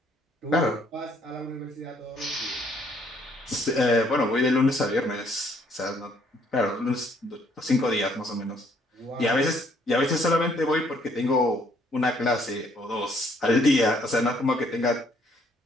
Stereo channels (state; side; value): normal; both; correlation 0.65